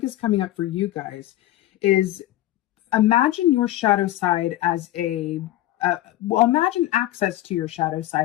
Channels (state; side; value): quieter; right; 15.0 dB